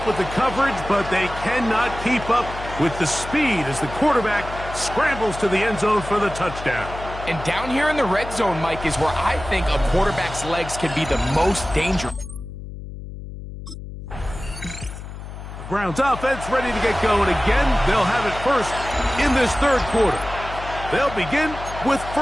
with the coverage, but they cannot keep up with the speed as the quarterback scrambles to the end zone for the touchdown. And down here in the red zone, Mike, is where I think a quarterback's legs can be the most dangerous. Browns offense ready to get going again. They'll have it first in this third quarter. They'll begin with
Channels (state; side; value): noise; left; hum, 11 dB below the sound